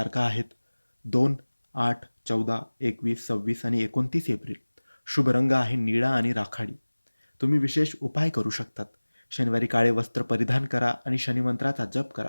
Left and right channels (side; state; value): both; inverted; correlation -1.00